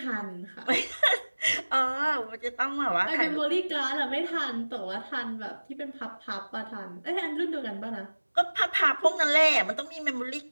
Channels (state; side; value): inverted; both; correlation -1.00